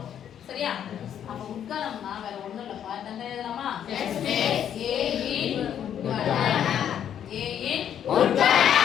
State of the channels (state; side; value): quieter; right; 9.5 dB